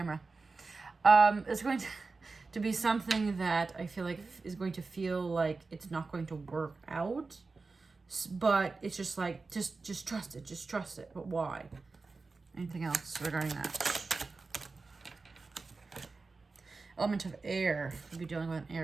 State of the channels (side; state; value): left; quieter; 4.0 dB